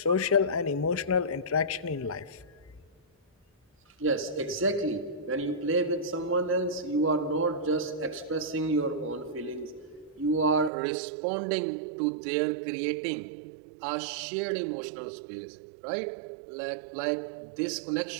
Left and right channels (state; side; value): drops out; left; at 10.7 s